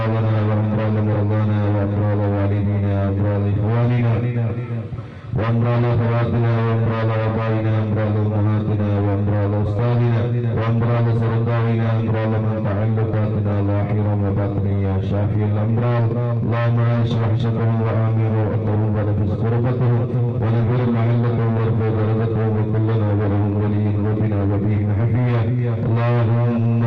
وامراض مرضانا وامراض والدينا وامراض اخواننا وامراض اخواتنا وامراض ابائنا وامراض امهاتنا وامراض استاذنا وامراض سرطاننا وامراض من تعلقاتنا ظاهرا وباطنا يا شافي الامراض. اللهم اشرح شرهم وامر واتهم ونفس كربتهم ونذر محلتهم وارفع درجتهم وكلنا ولهم ولي وبنا وبهم حفيا. اللهم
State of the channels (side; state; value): both; identical; correlation 1.00